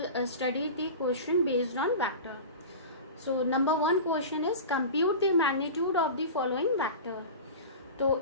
study the question based on vector. So number one question is compute the magnitude of the following vector. तो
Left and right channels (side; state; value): both; inverted; correlation -0.31